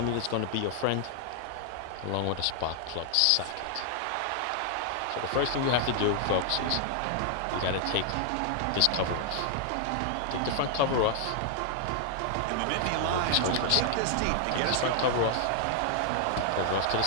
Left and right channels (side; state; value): both; different; correlation 0.00